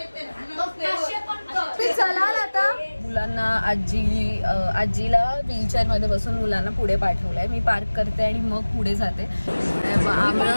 चला आता मुलांना आजीला व्हीलचेअर मध्ये बसून मुलांना पुढे पाठवलंय. मी पार्क करते आणि मग पुढे जाते.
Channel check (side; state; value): both; inverted; correlation -1.00